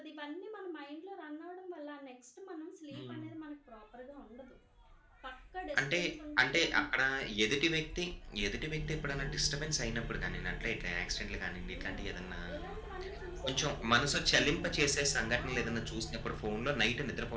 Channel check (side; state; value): both; identical; correlation 1.00